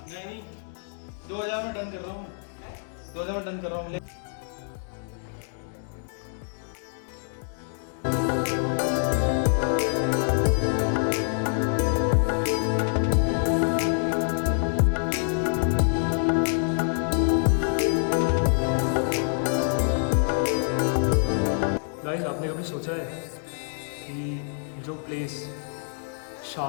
नहीं 2000 में डन कर रहा हूँ, 2000 में डन कर रहा हूँ। गाइस आपने कभी सोचा है कि जो प्लेस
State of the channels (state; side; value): silent; right; digital silence